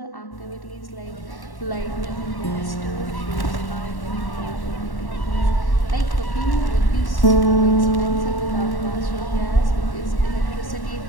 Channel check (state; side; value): late; right; 1.1 ms